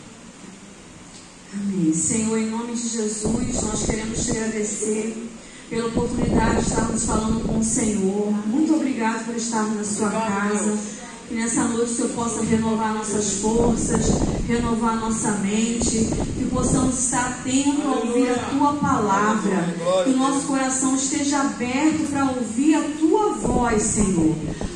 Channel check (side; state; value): both; identical; correlation 1.00